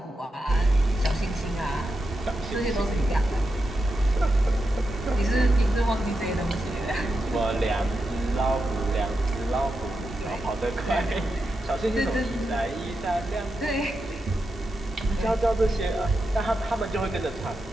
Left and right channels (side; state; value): both; normal; correlation 0.87